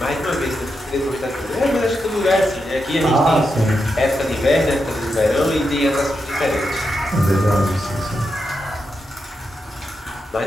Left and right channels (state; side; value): normal; both; correlation 0.86